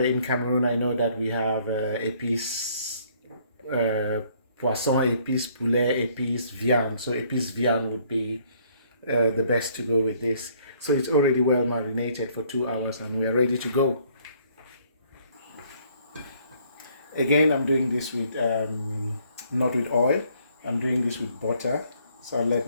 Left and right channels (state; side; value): inverted; both; correlation -0.63